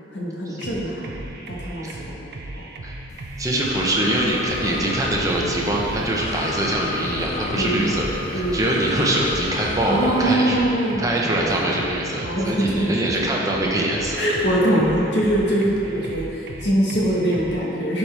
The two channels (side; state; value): both; normal; correlation 0.45